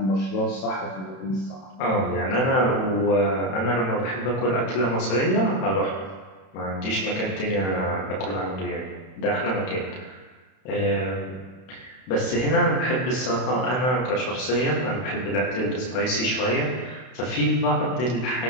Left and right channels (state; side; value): late; right; 32 ms